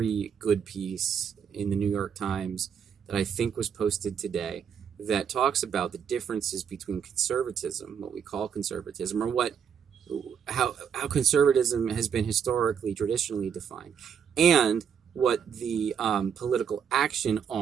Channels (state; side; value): quieter; left; 7.6 dB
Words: good piece in the New York Times that I think was posted today that talks about the differences between conservatism, what we call conservatism, or how conservatism has been historically, traditionally defined, and what the political action